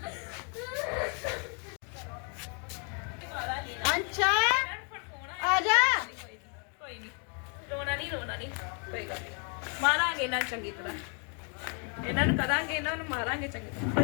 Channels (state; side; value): quieter; right; 39.3 dB